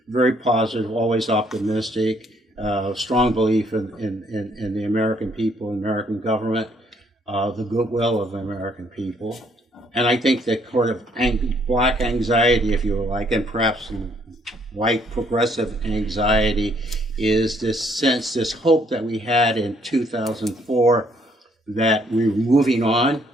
very positive, always optimistic, strong belief in the American people, American government, the goodwill of the American people. And I think that sort of black anxiety, if you like, and perhaps white progressive anxiety, is this sense, this hope that we had in 2004 that we're moving on,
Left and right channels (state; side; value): normal; both; correlation 0.67